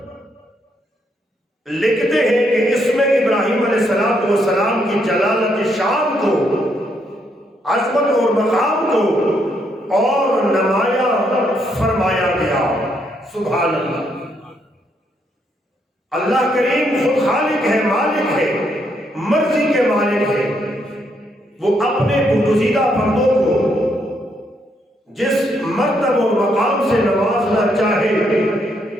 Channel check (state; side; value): normal; both; correlation 0.75